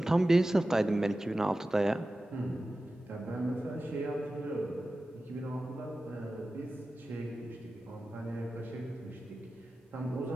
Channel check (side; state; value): both; normal; correlation 0.95